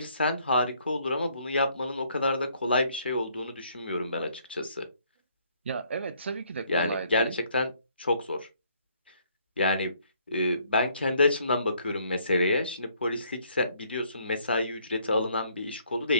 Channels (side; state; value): both; inverted; correlation -0.66